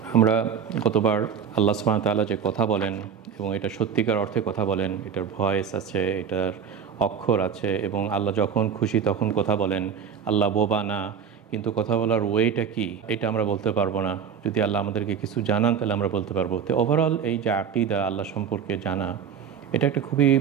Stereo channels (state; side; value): quieter; left; 7.4 dB